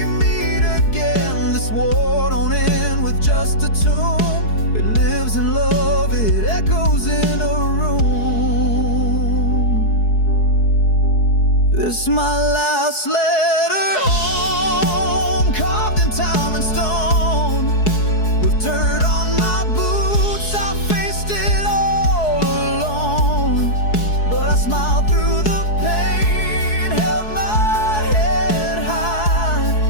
meet again. This war don't end with just a tomb, it lives in love, it echoes in a room. This is my last letter home, carved in time and stone. With dirt on my boots, I faced it all alone. But I smiled through the pain, held my head high.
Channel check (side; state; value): right; late; 4.7 ms